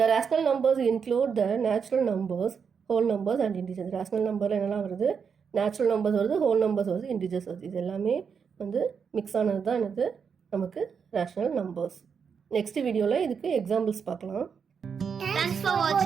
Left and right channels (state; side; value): quieter; left; 6.4 dB